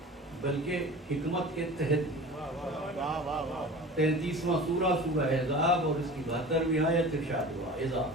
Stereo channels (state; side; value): normal; both; correlation 0.38